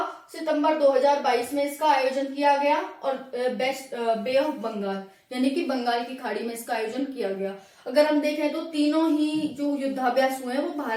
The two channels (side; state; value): both; identical; correlation 1.00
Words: सितंबर 2022 में इसका आयोजन किया गया और बे ऑफ बंगाल यानी कि बंगाल की खाड़ी में इसका आयोजन किया गया। अगर हम देखें तो तीनों ही जो युद्धाभ्यास हुए हैं वो